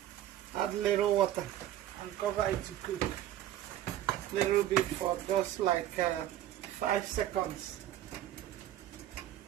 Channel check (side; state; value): left; quieter; 12.5 dB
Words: Add little water and cover it to cook. Little bit for just like 5 seconds.